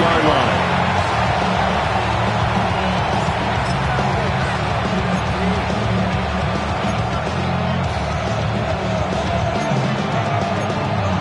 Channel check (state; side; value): identical; both; correlation 1.00